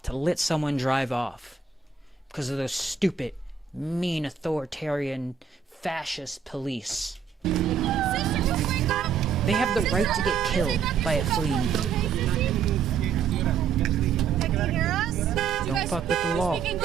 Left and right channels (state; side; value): quieter; left; 6.5 dB